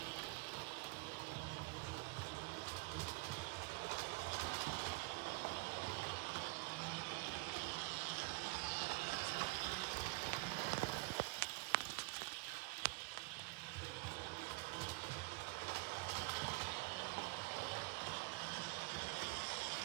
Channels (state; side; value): quieter; left; 27.0 dB